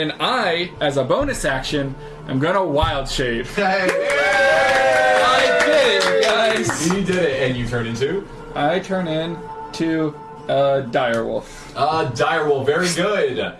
I, as a bonus action, I'm going to Wild Shape. Hey. I did it, guys. You did it, and you turned into? I turn into Direwolf. Direwolf, very good.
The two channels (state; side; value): identical; both; correlation 1.00